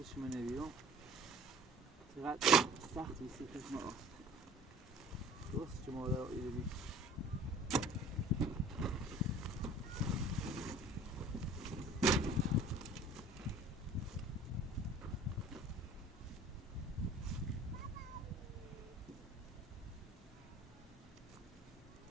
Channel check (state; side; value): normal; both; correlation 0.48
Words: شما نبیرم چقدر سخت بیسی کس ما رفت درست شما در آیده بید